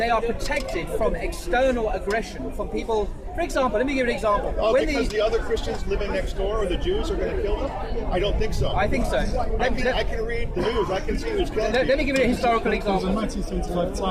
are protected from external aggression, from people. For example, let me give you an example. Oh, because the other Christians living next door or the Jews are going to kill them? I don't think so. I think so. I can read the news. I can see who's killing Let me give you a historical It was a example. 1975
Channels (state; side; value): identical; both; correlation 1.00